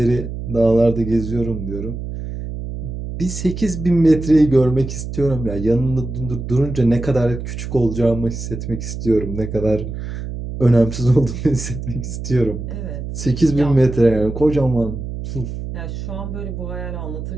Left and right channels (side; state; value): right; noise; hum, 7 dB below the sound